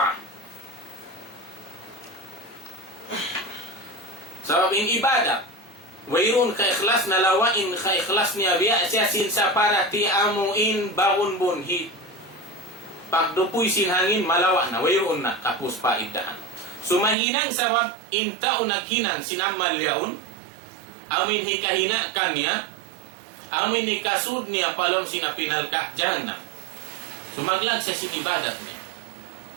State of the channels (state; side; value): drops out; left; at 17.2 s